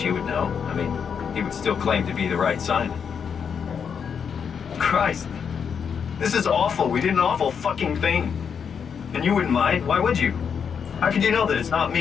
you would know. I mean, he would still claim to be the right Simon. Christ. This is awful. We did an awful fucking thing. And you wouldn't mind? Why would you? How could you know that it's not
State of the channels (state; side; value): quieter; right; 6.9 dB